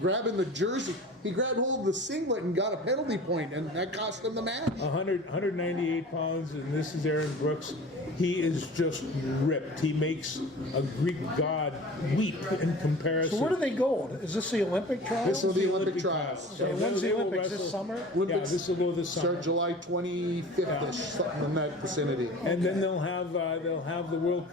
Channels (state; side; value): normal; both; correlation 0.40